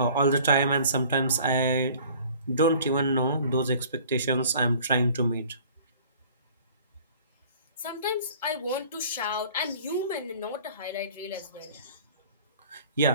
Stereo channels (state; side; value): inverted; both; correlation -0.50